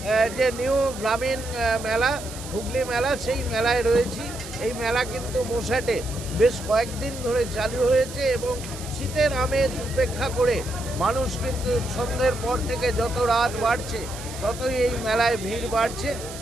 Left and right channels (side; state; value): right; noise; hiss, 13 dB below the sound